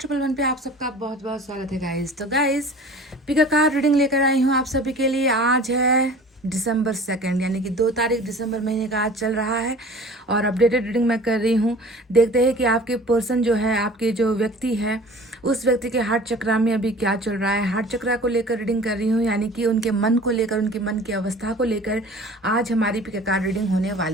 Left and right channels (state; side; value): normal; both; correlation 0.44